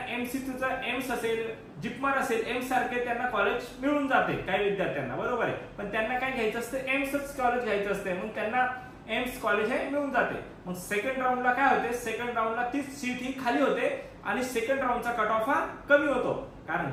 MCCचा एम्स असेल, जिपमर असेल, एम्स सारखे त्यांना कॉलेज मिळून जाते काही विद्यार्थ्यांना, बरोबर आहे, पण त्यांना काय घ्यायचं असतं, एम्सच कॉलेज घ्यायचं असते, मग त्यांना एम्स कॉलेज हे मिळून जाते। मग सेकंड राऊंडला काय होते, सेकंड राऊंडला ती सीट ही खाली होते आणि सेकंड राऊंडचा कट ऑफ हा कमी होतो, कारण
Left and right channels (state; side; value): identical; both; correlation 1.00